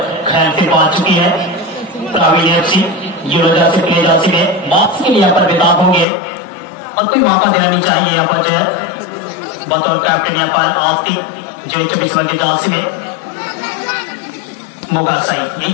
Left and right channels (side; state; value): right; drops out; at 6.1 s